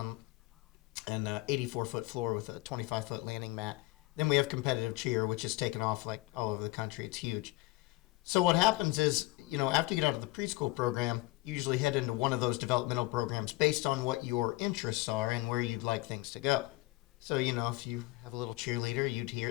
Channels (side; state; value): right; quieter; 21.1 dB